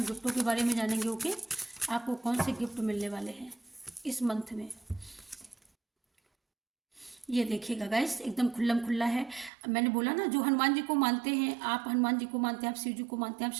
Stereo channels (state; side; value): drops out; left; at 9.5 s